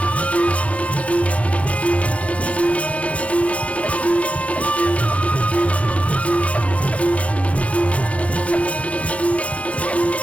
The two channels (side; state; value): right; late; 0.065 ms